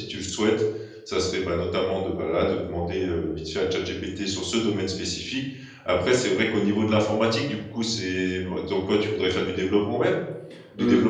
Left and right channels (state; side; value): identical; both; correlation 1.00